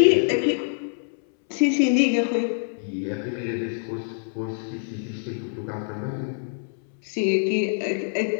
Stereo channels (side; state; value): right; silent; 61 dB below the other